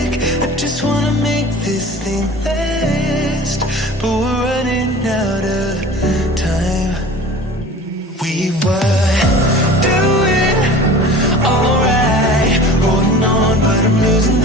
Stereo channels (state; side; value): normal; both; correlation 0.41